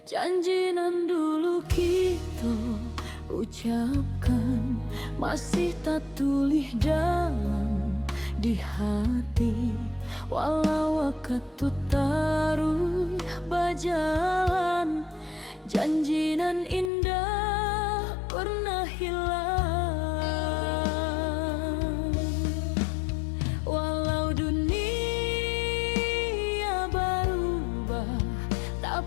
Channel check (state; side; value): drops out; right; at 16.9 s